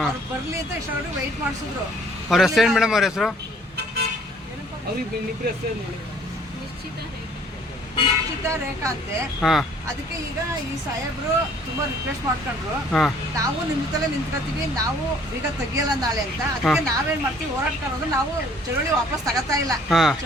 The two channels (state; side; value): normal; both; correlation 0.58